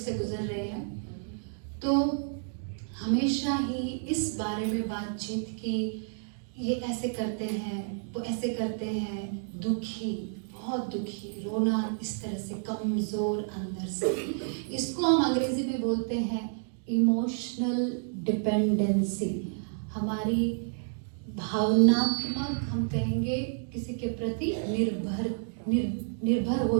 गुजर रहे हैं। तो हमेशा ही इस बारे में बातचीत की, ये ऐसे करते हैं, वो ऐसे करते हैं, दुखी, बहुत दुखी, रोना, इस तरह से कमज़ोर अंदर से। इसको हम अंग्रेजी में बोलते हैं इमोशनल डिपेंडेंसी। हमारी भावनात्मक, हम कहेंगे किसी के प्रति निर्भर हो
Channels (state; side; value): silent; left; digital silence